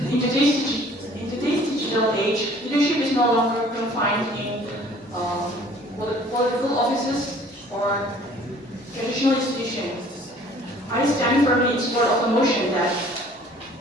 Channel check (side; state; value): both; normal; correlation 0.53